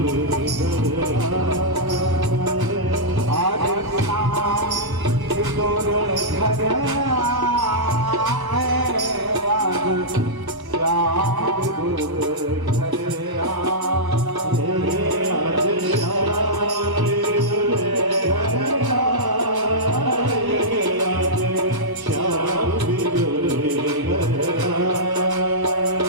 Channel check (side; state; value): left; late; 1.1 ms